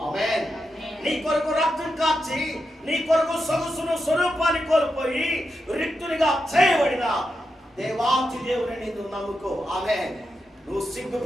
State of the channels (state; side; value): normal; both; correlation 0.87